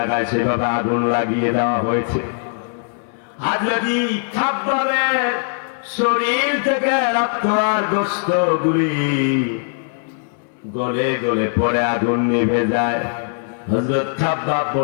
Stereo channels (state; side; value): silent; right; 66 dB below the other